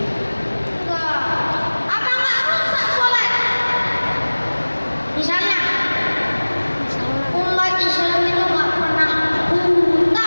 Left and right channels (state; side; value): inverted; both; correlation -1.00